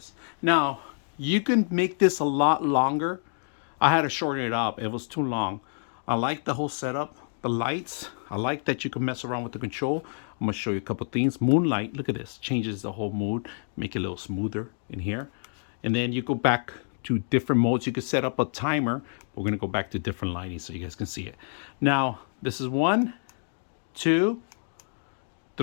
Now, you can make this a lot longer. I had to shorten it up. It was too long. I like the whole setup. The lights, I like that you can mess around with the control. I'm gonna show you a couple things. Moonlight, look at this. Changes the whole mood. Make it a little smoother in here. And then you go back to different modes. You can set up a timer. We're gonna go back to different lighting so you guys can see it. Now, this is 1, 2,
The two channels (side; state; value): right; silent; digital silence